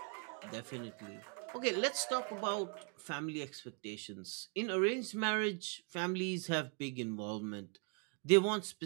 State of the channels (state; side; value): quieter; left; 37.7 dB